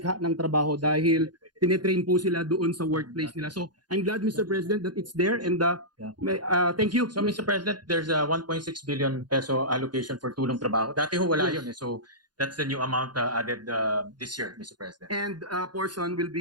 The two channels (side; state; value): left; late; 0.70 ms